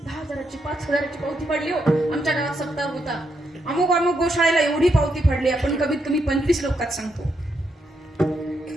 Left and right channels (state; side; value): normal; both; correlation 0.79